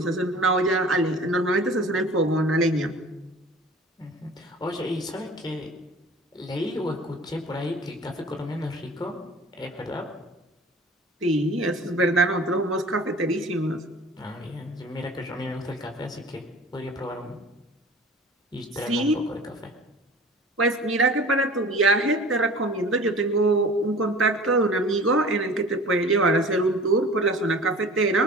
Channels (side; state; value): both; normal; correlation 0.43